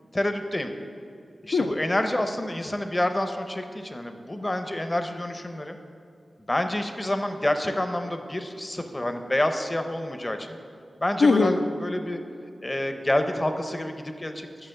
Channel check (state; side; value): normal; both; correlation 0.97